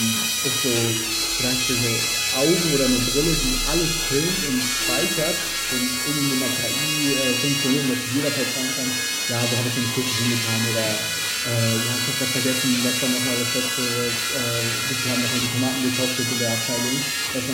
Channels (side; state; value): both; identical; correlation 1.00